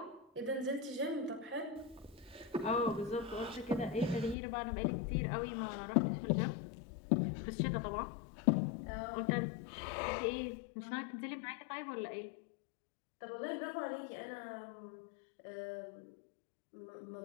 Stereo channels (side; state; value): right; drops out; at 4.4 s